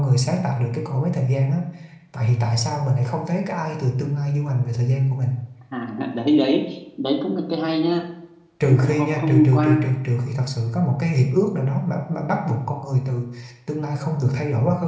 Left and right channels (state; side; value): identical; both; correlation 1.00